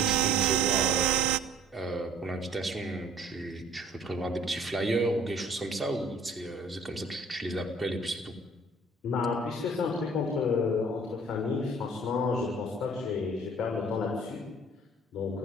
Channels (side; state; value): both; normal; correlation 0.52